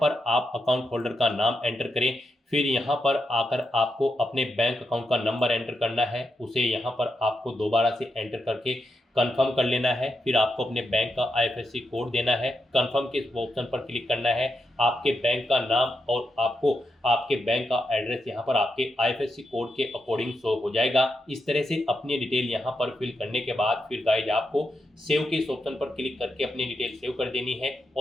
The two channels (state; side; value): normal; both; correlation 0.85